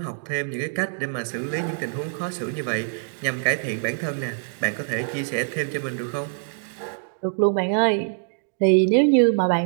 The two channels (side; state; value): left; silent; digital silence